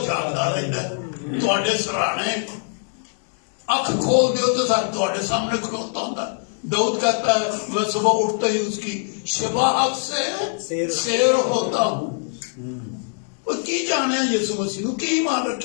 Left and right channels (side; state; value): right; silent; 62 dB below the other